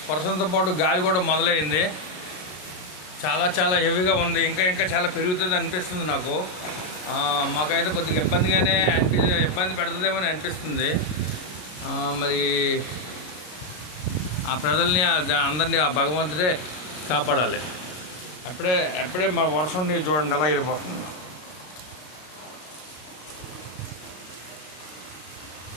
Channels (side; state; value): right; late; 33 ms